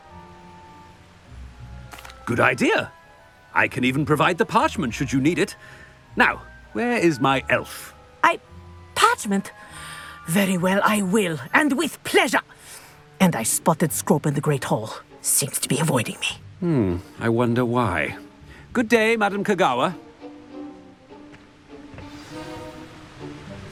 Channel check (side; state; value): both; identical; correlation 1.00